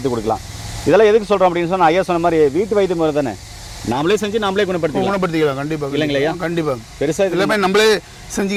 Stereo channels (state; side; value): identical; both; correlation 1.00